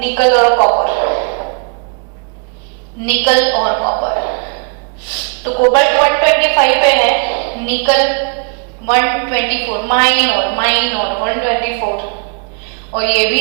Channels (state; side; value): quieter; left; 36.7 dB